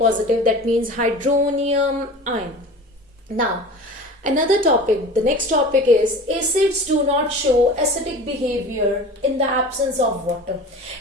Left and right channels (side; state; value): both; normal; correlation 0.37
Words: that means hydronium ion. Now another topic, the next topic is acids do not show acidic behavior in the absence of water.